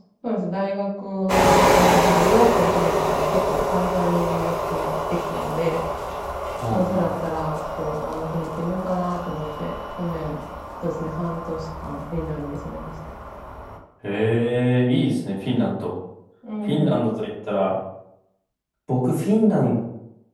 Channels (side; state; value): both; identical; correlation 1.00